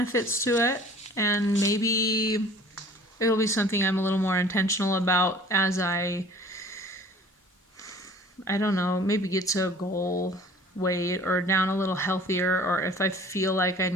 to it, and maybe it'll be something I'm a little more intentional about as I don't know, maybe get to a goal weight or down a little healthier, or if I feel like I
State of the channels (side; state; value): both; normal; correlation 0.48